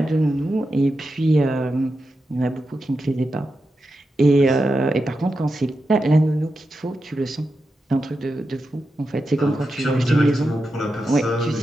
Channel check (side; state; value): both; normal; correlation 0.89